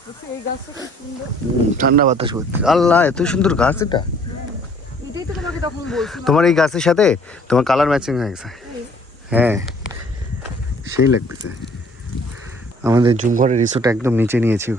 ঠান্ডা বাতাস করতে। আল্লাহ, এত সুন্দর গাছ এটা। তোমার এই গাছের সাথে তোমার কালার ম্যাচিং হয়ে গেছে। হ্যাঁ, সেই লাগতেছে। আমাদের জুমঘরের রিসোর্ট একদম নিচে নিয়েছি,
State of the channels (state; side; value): normal; both; correlation 0.57